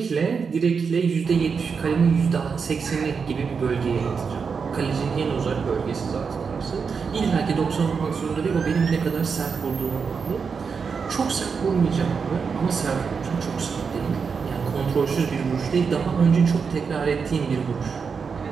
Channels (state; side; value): quieter; left; 5.7 dB